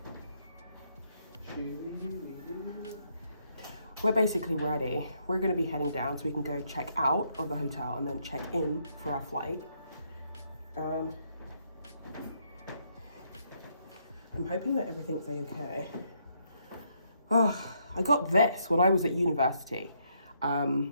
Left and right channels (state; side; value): inverted; both; correlation -0.74